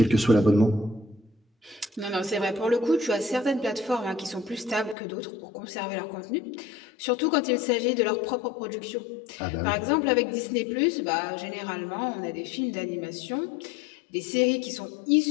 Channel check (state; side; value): drops out; right; at 5.0 s